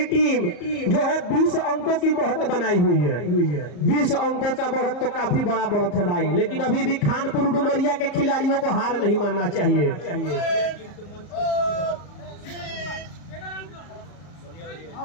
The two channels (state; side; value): late; right; 34 ms